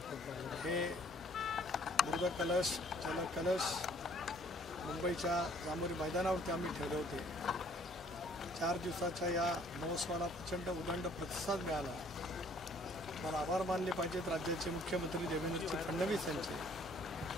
हे मृदकलश, जलकलश मुंबईच्या जांभोरी मैदानावरती आम्ही ठेवले होते। 4 दिवसाच्या या महोत्सवाला प्रचंड उदंड प्रतिसाद मिळाला। मला आभार मानले पाहिजेत राज्याचे मुख्यमंत्री देवेंद्र फडणवीस यांचे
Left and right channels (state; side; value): normal; both; correlation 0.59